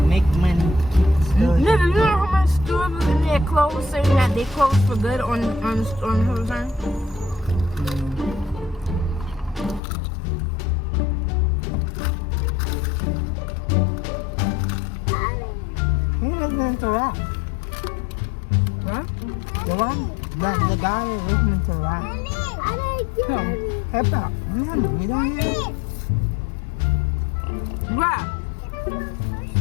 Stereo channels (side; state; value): right; drops out; at 9.8 s